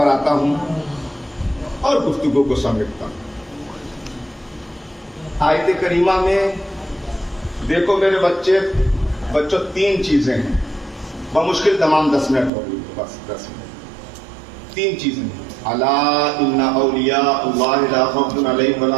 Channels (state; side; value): drops out; left; at 12.5 s